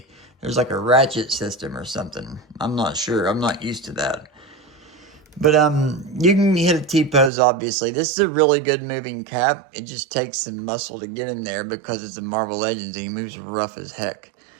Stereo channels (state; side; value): drops out; left; at 7.3 s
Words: like a ratchet system or something. I'm not sure. I'm not used to that. But you can hit a T-pose, obviously. This is a really good moving Cap. It just takes some muscle to get him there because it's a Marvel Legends and he moves rough as heck.